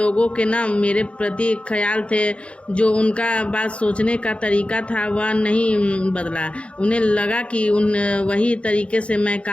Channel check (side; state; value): right; late; 0.060 ms